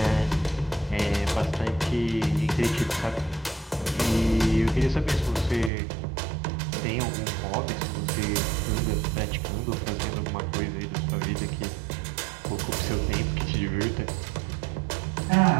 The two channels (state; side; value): drops out; left; at 5.7 s